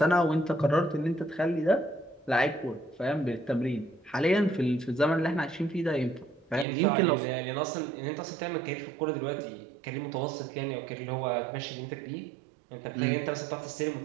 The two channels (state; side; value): drops out; left; at 6.7 s